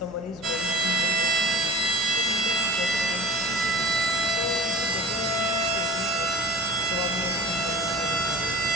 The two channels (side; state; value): left; noise; hum, 26 dB below the sound